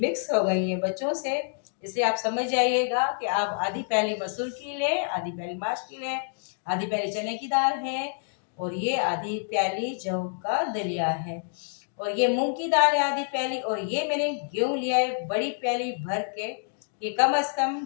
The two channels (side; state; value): right; silent; digital silence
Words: हो गई हैं बच्चों से। इसलिए आप समझ जाइएगा कि आप आधी प्याली मसूर की लें, आधी प्याली माश की लें, आधी प्याली चने की दाल है और ये आधी प्याली जौ का दलिया है और ये मूंग की दाल है आधी प्याली। और ये मैंने गेहूं लिया है बड़ी प्याली भर के, ये कम से कम